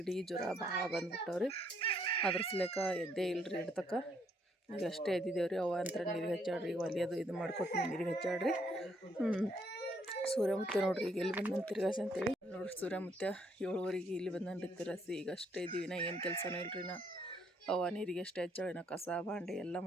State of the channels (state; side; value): normal; both; correlation 0.70